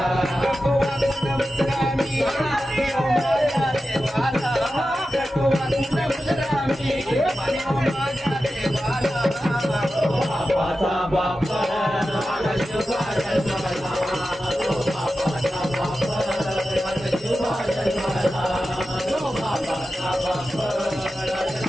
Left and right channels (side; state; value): both; normal; correlation 0.92